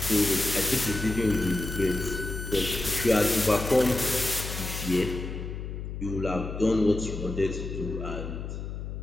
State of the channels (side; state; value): left; noise; hum, 7 dB below the sound